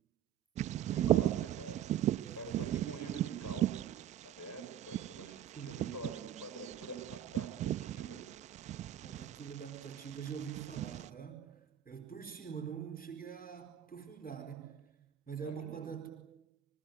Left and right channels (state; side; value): quieter; left; 10.6 dB